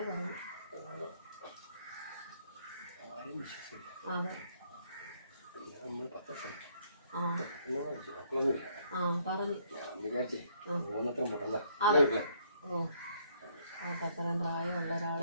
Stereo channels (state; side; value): inverted; both; correlation -0.67